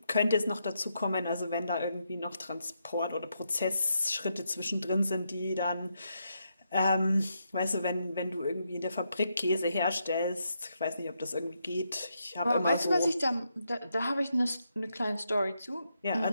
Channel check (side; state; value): both; inverted; correlation -0.81